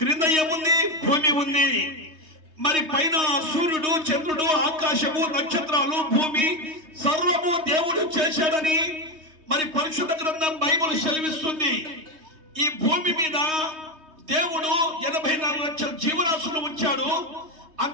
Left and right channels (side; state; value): left; late; 3.2 ms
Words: ఏముంది? భూమి ఉంది. మరి పైన సూర్యుడు, చంద్రుడు, ఆకాశము, నక్షత్రాలు, భూమి సర్వము దేవుడు చేశాడని మరి పరిశుద్ధ గ్రంథం బైబిల్ సెలవిస్తుంది. ఈ భూమి మీద దేవుడు 84 లక్షల జీవరాశులు ఉంచాడు.